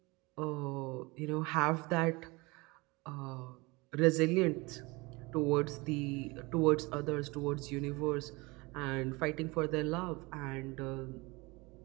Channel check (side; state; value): left; quieter; 24.8 dB